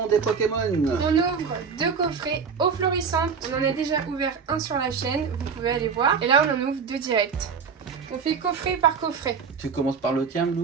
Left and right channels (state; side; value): quieter; left; 5.9 dB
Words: des Pokémon. On ouvre 2 coffrets eau florissante. On en a déjà ouvert un sur la chaîne, vous pouvez aller voir. Et là on en ouvre 2 directs. On fait coffret par coffret. Tu commences par le tien,